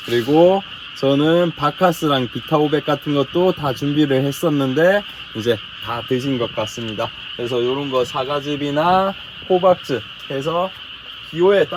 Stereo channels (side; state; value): both; identical; correlation 1.00